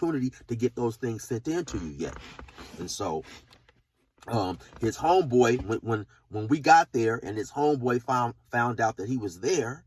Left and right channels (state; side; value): identical; both; correlation 1.00